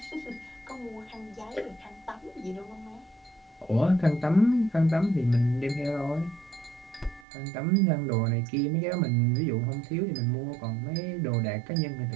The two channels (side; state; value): left; drops out; at 7.2 s